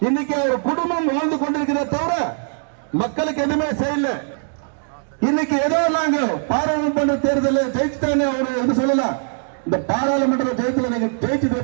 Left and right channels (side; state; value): left; silent; digital silence